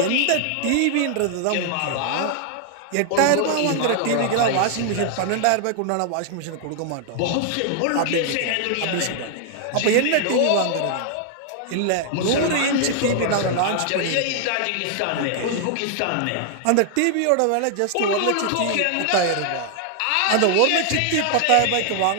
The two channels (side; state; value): both; different; correlation 0.00